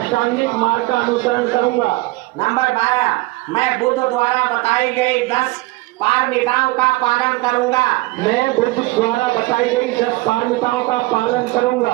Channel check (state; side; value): quieter; left; 21.2 dB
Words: मार्ग का अनुसरण करूंगा। नंबर 12, मैं बुद्ध द्वारा बताई गई 10 पारमिताओं का पालन करूंगा। मैं बुद्ध द्वारा बताई गई 10 पारमिताओं का पालन करूंगा।